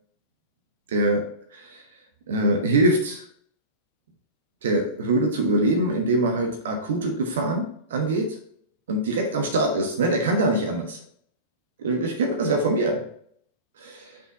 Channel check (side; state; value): both; inverted; correlation -0.30